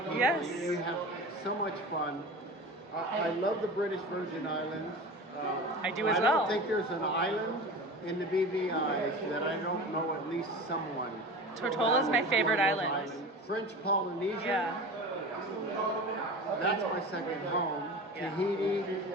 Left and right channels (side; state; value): both; normal; correlation 0.33